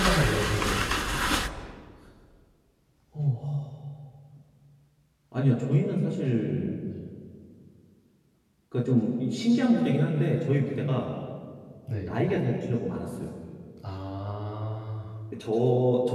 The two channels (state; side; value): identical; both; correlation 1.00